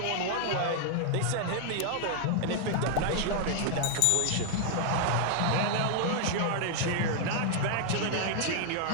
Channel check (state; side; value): different; both; correlation 0.00